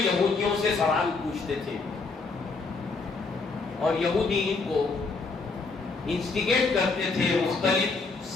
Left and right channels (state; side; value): quieter; right; 4.1 dB